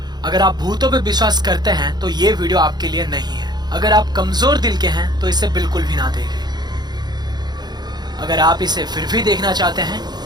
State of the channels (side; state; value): left; late; 0.20 ms